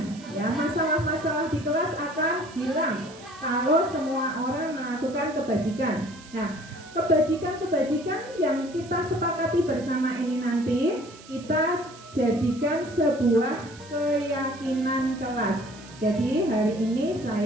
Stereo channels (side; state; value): right; noise; hiss, 20 dB below the sound